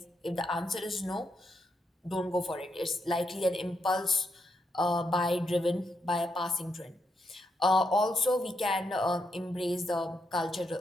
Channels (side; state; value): both; normal; correlation 0.81